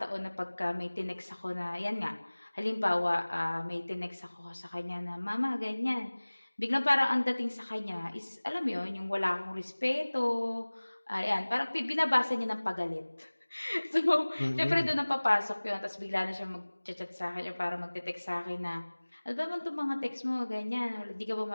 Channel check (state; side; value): inverted; both; correlation -1.00